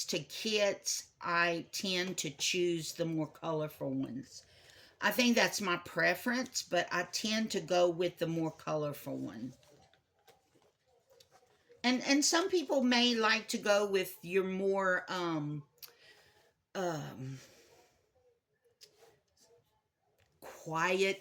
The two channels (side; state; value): both; identical; correlation 1.00